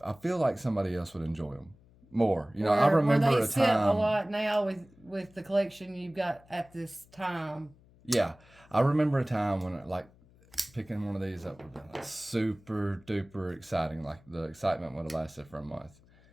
feel like somebody else would enjoy them more. I remember a time. A lot now with the collection you've got at this time. Yeah, I remember a time when picking one of these up would have been like super duper exciting. Like the excitement would have lasted for a month.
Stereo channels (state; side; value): noise; left; hum, 27 dB below the sound